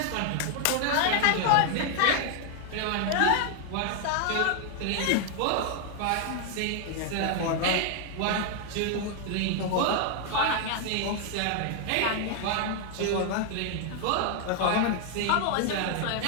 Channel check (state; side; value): different; both; correlation 0.00